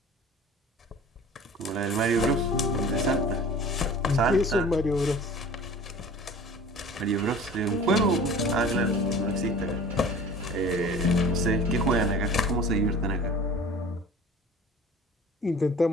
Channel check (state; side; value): normal; both; correlation 0.43